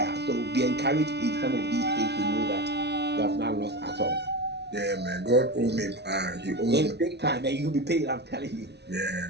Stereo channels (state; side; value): late; left; 0.49 ms